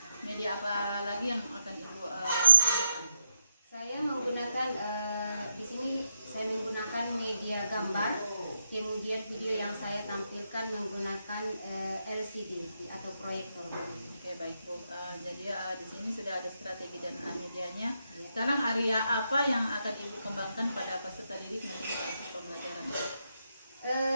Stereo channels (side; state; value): both; inverted; correlation -0.80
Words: media apa lagi yang akan Ibu gunakan? Saya menggunakan di sini saya menggunakan media gambar, kemudian video yang saya tampilkan menggunakan LCD atau proyektor. Oke, baik, Bu. Jadi di sini sudah ada strategi dan medianya. Sekarang area apa yang akan Ibu kembangkan pada peserta didik nanti pada pembelajaran?